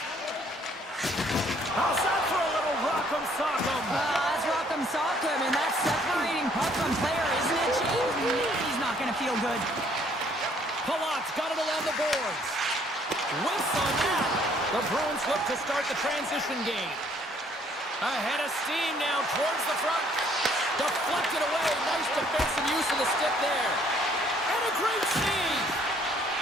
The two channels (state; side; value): normal; both; correlation 0.63